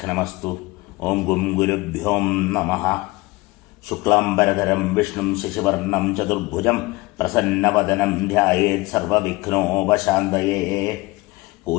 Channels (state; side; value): quieter; right; 22.0 dB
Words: ഓം ഗും ഗുരുഭ്യോ നമഃ. ശുക്ലാംബരധരം വിഷ്ണും ശശിവർണം ചതുർഭുജം പ്രസന്നവദനം ധ്യായേത് സർവവിഘ്നോപശാന്തയേ.